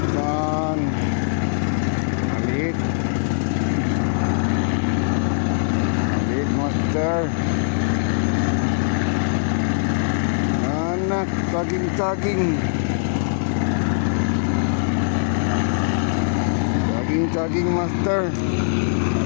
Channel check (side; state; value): right; silent; digital silence